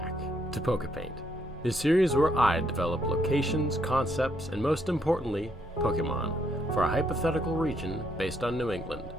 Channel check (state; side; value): normal; both; correlation 0.73